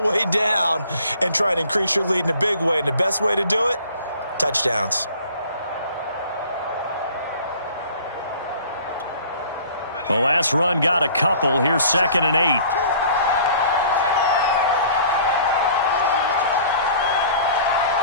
the way down and try to increase your lead in a big way. And the best way to do it, touchdowns. The last run got a couple. Here's 2nd and 8.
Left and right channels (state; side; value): inverted; both; correlation -0.50